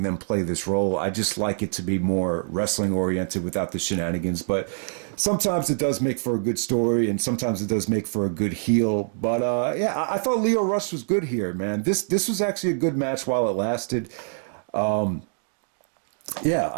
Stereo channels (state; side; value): silent; left; digital silence